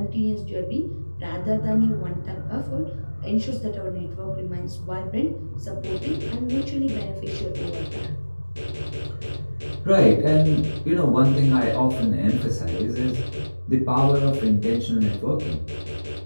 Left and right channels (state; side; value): inverted; both; correlation -1.00